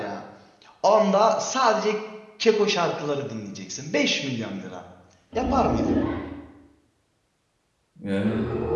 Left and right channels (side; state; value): both; identical; correlation 1.00